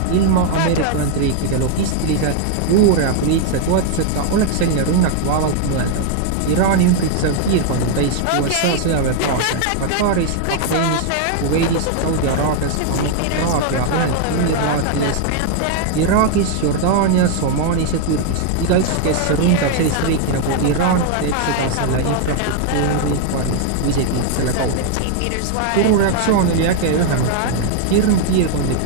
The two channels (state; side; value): different; both; correlation 0.00